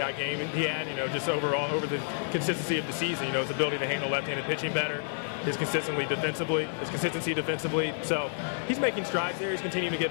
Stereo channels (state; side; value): silent; right; 58 dB below the other